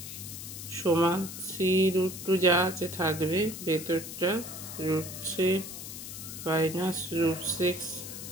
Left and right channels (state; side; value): noise; left; hiss, 10 dB below the sound